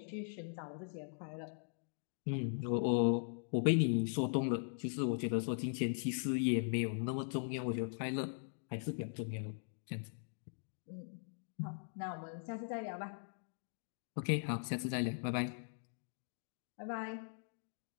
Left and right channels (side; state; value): right; silent; digital silence